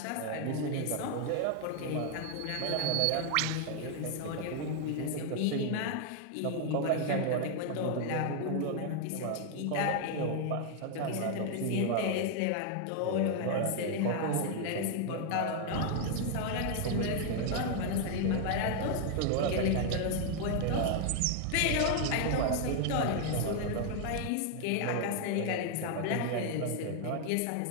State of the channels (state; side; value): different; both; correlation 0.00